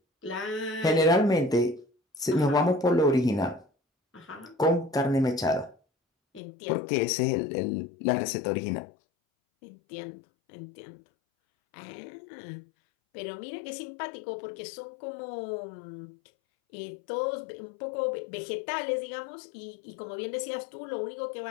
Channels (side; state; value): right; drops out; at 6.4 s